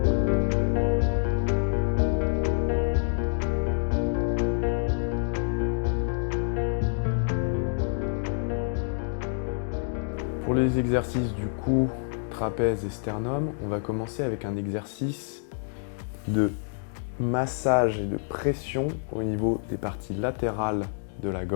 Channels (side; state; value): right; silent; digital silence